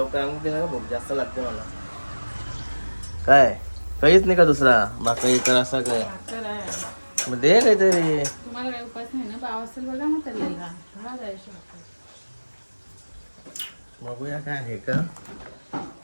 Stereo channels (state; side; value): inverted; both; correlation -1.00